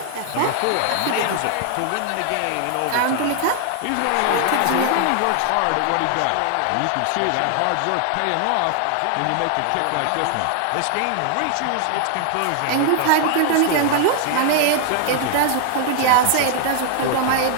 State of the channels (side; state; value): both; different; correlation 0.00